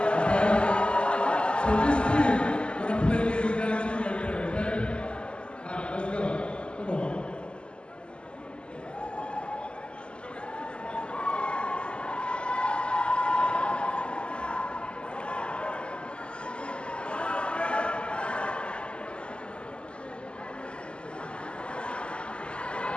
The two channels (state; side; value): late; right; 0.052 ms